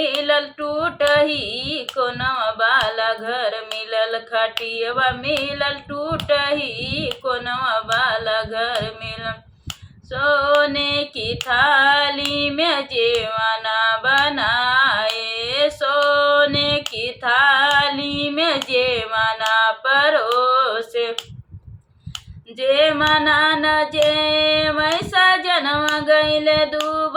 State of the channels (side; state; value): both; identical; correlation 1.00